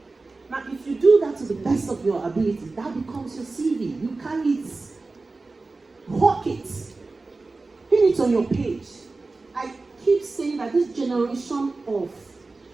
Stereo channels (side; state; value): left; quieter; 3.6 dB